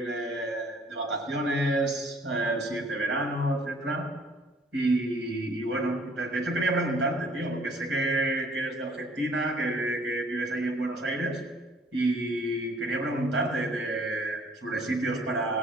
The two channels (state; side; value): normal; both; correlation 0.58